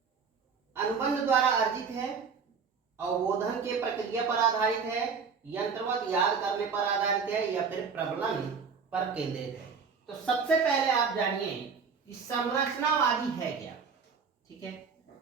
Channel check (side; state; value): left; quieter; 5.7 dB